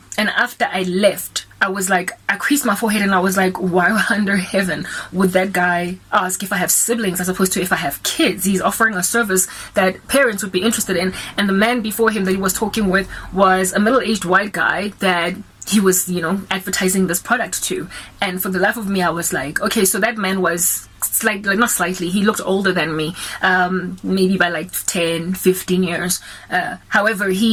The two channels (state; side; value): identical; both; correlation 1.00